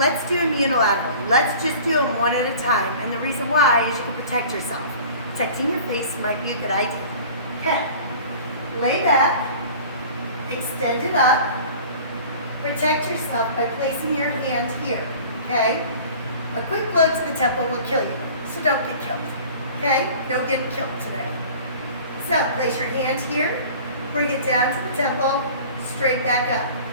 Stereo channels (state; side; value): inverted; both; correlation -0.44